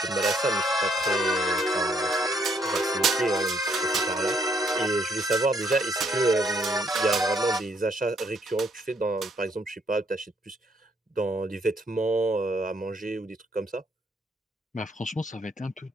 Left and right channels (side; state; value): both; normal; correlation 0.70